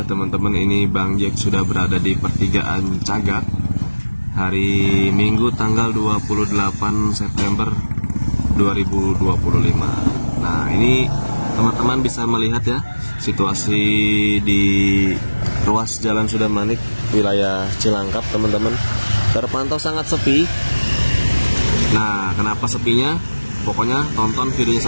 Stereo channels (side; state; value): both; inverted; correlation -1.00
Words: teman-teman. Ini Bang Jack sudah berada di pertigaan Cagak hari Minggu tanggal 28 September 2025. Nah ini teman-teman bisa melihat ya situasi di ruas jalan Sudamanik wilayah Cilangkap teman-teman, terpantau sangat sepi. Nah kenapa sepinya? Pokoknya tonton videonya